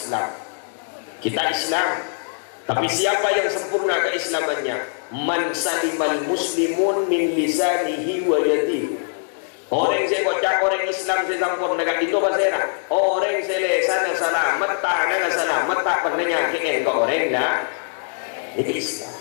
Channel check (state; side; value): silent; right; digital silence